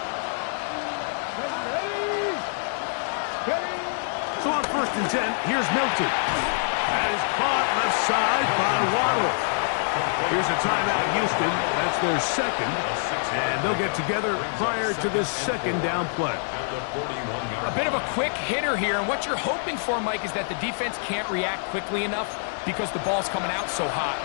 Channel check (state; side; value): silent; right; digital silence